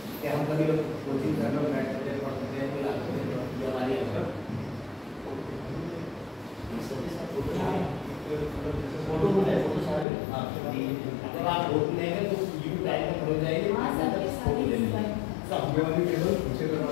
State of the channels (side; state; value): right; drops out; at 10.1 s